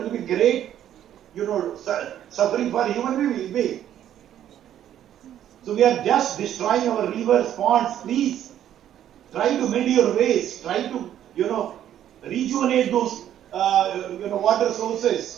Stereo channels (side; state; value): left; quieter; 11.0 dB